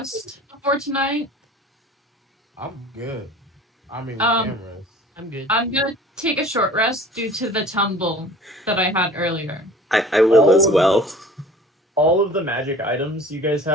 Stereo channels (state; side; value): normal; both; correlation 0.45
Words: before tonight? I'm good. I mean, we Um, can rest. I'm good. I'm gonna take a short rest due to the tumble that I had earlier. I will as well. All of the magic items you guys